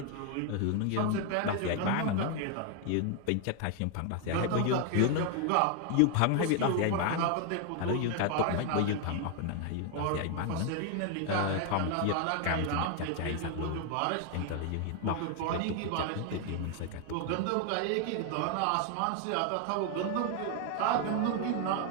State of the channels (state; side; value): different; both; correlation 0.00